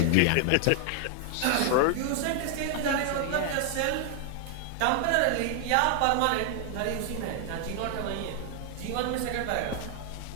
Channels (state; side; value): different; both; correlation 0.00